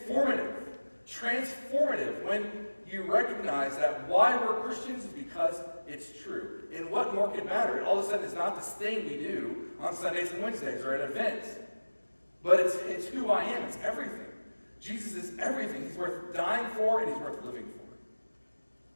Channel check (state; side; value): inverted; both; correlation -1.00